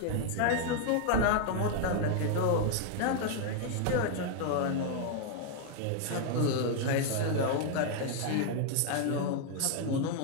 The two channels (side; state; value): both; different; correlation 0.00